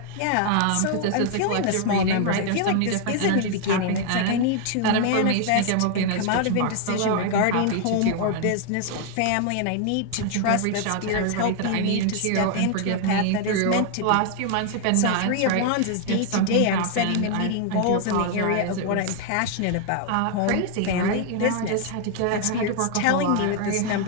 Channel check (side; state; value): both; different; correlation 0.00